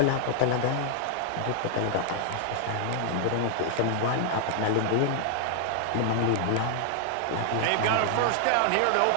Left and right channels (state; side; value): different; both; correlation 0.00